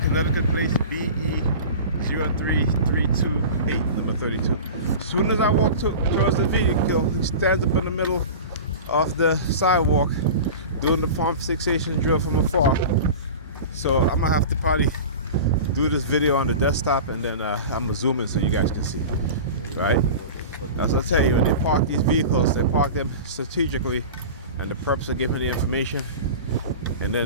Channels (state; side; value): inverted; both; correlation -0.33